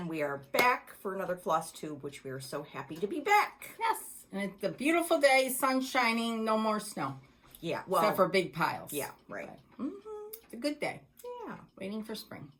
we are back for another floss tube, which we are so happy to be back. Yes, and it's a beautiful day, sun shining, no more snow. Yeah, well. Except for big piles. Yeah, right. It's a good day. Yeah. Waiting for spring.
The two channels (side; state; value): both; identical; correlation 1.00